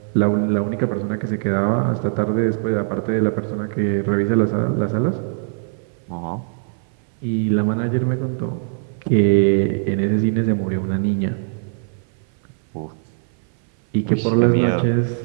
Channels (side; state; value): left; silent; 60 dB below the other